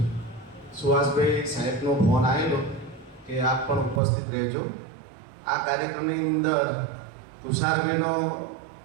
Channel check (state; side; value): drops out; left; at 4.0 s